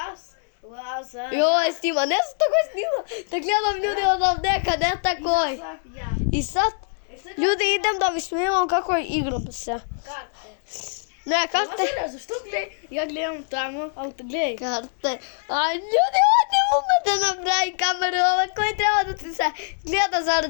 Lazar. Joj, snima, ne znam tako snima. Da gledam ljudi odavde kad ne takoj. Ja. I sad, ljudi idem da vi snimam kako igram se. Karte. Ne, karte. Lazar, zašto ja gledam tamo, ali gledaj. Karte. A ljudi, ovo ne ume da napravi kameru, ovako je treba da ti se gleda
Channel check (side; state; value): right; silent; 63 dB below the other